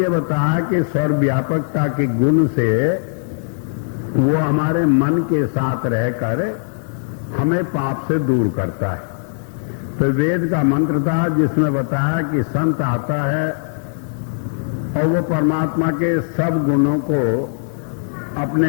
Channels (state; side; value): silent; right; digital silence